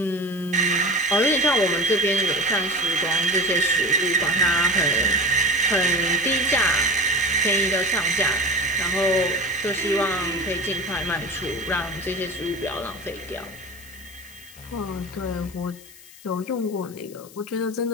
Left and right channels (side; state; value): left; noise; hiss, 21 dB below the sound